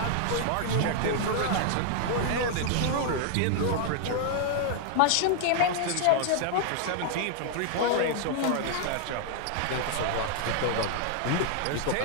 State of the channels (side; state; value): both; different; correlation 0.00